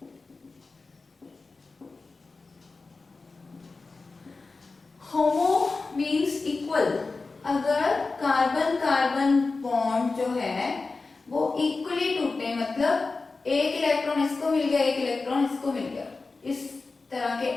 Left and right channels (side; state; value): right; quieter; 3.9 dB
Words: Homo means equal, अगर carbon carbon bond जो है वो equally टूटे, मतलब एक इलेक्ट्रॉन इसको मिल गया, एक इलेक्ट्रॉन इसको मिल गया, इस तरह के